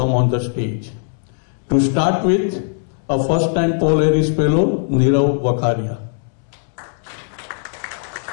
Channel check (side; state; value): right; silent; 66 dB below the other